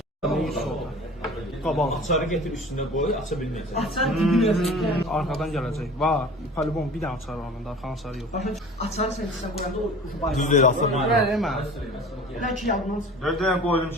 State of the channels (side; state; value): both; normal; correlation 0.42